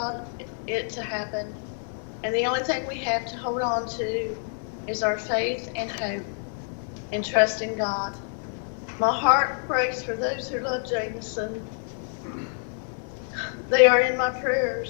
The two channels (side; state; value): right; silent; 60 dB below the other